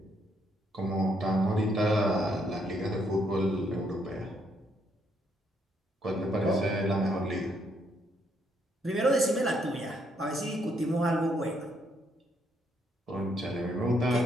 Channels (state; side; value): normal; both; correlation 0.73